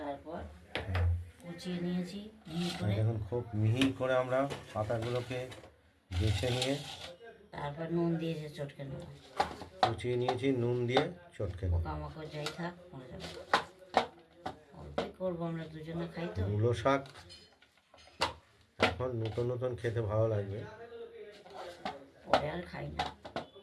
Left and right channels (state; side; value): identical; both; correlation 1.00